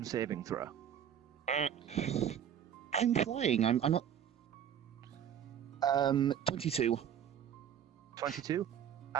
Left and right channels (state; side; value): quieter; left; 9.2 dB